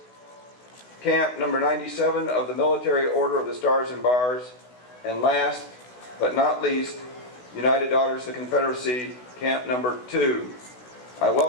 Camp number 97 of the Military Order of the Stars and Bars, and last but not least, United Daughters of the Confederacy Camp number 2. I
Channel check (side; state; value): right; late; 16 ms